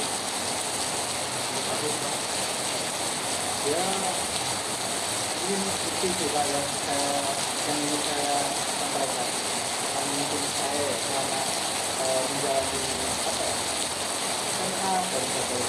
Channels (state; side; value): identical; both; correlation 1.00